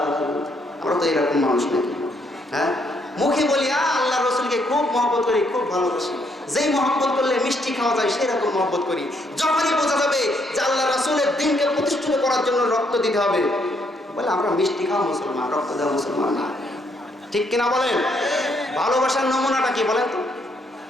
আমরা তো এরকম মানুষ নাকি? হ্যাঁ, মুখে বলি আল্লাহ রসুলকে খুব মহব্বত করি, খুব ভালোবাসি, যেই মহব্বত করলে মিষ্টি খাওয়া যায় সেরকম মহব্বত করি। যখনই বোঝা যাবে যে আল্লাহ রাসূলের দ্বীনকে প্রতিষ্ঠিত করার জন্য রক্ত দিতে হবে, বলে আমরা মিষ্টি খাওয়া মুসলমান, রক্ত দেওয়া মুসলমান না, ঠিক কিনা বলেন? ভালোবাসার নমুনাটা কি বলেন তো?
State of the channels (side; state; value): both; normal; correlation 0.72